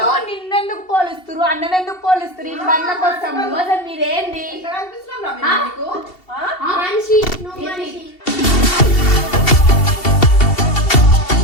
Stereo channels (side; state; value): right; late; 2.7 ms